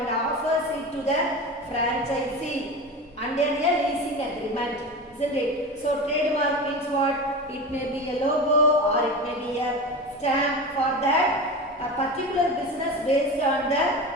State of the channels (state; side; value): normal; both; correlation 0.27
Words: offers it to the franchisee under a leasing agreement, isn't it? So trademark means what? It may be a logo or it may be a stamp for that a particular business based on the